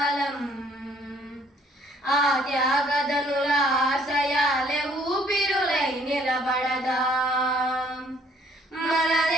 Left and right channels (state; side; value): normal; both; correlation 0.63